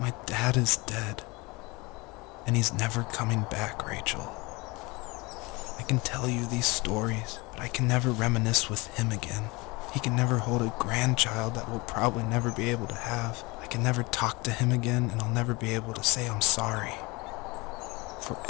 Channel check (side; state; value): right; quieter; 25.0 dB